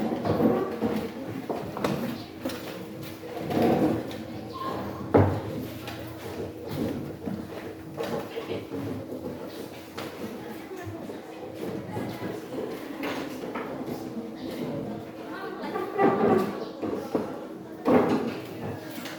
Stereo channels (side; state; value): both; identical; correlation 1.00